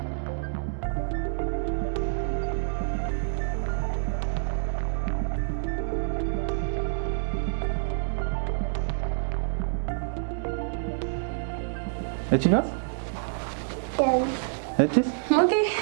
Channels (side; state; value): left; silent; 60 dB below the other